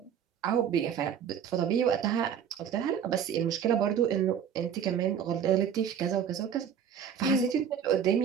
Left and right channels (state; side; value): quieter; left; 8.2 dB